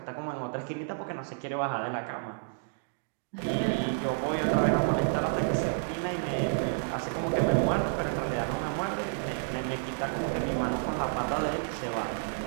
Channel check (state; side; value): silent; left; digital silence